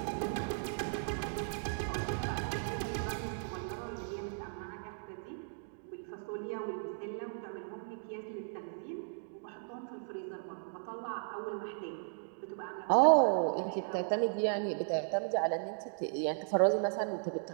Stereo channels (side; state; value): left; silent; digital silence